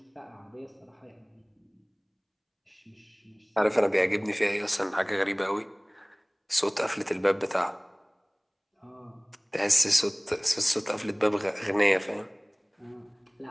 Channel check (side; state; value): both; identical; correlation 1.00